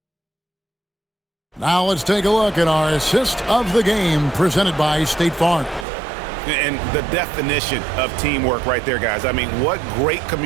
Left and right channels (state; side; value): drops out; left; at 5.9 s